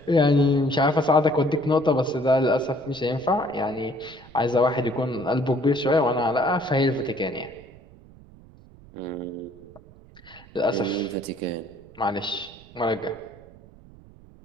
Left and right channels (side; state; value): right; noise; rumble, 23 dB below the sound